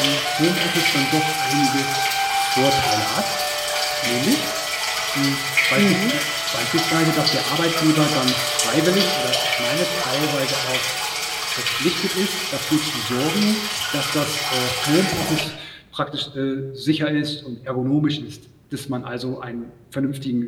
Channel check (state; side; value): identical; both; correlation 1.00